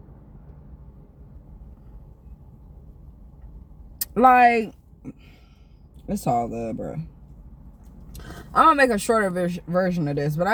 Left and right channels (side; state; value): both; identical; correlation 1.00